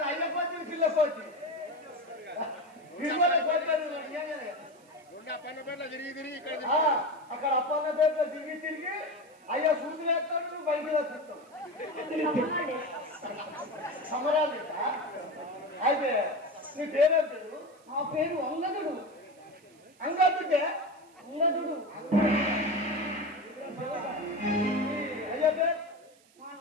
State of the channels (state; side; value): noise; right; hiss, 30 dB below the sound